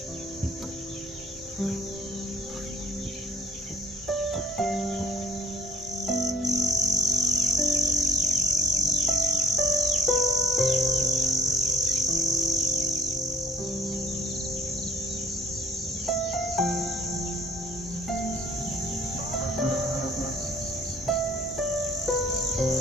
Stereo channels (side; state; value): both; normal; correlation 0.55